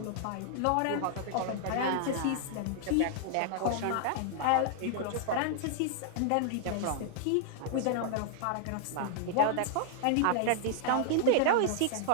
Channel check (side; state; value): both; different; correlation -0.01